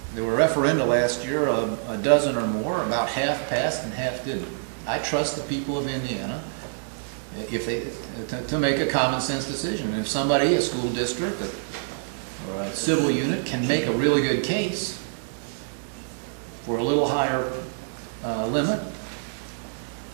There were referenda last year, a dozen or more, about half passed and half didn't. I trust the people of Indiana if they, to make a common sense decision. And if somebody, a school district or a civil unit, can make a really good case for a little higher limit,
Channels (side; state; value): left; silent; digital silence